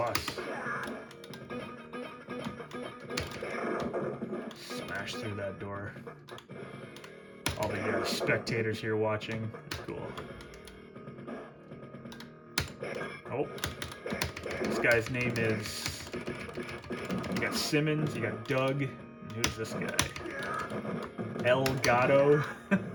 Smash through that door. All the spectators here watching. It's cool. Oh. This guy's name is... You got Simmons, you got Doug, and who's this guy? El Gato.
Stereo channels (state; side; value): identical; both; correlation 1.00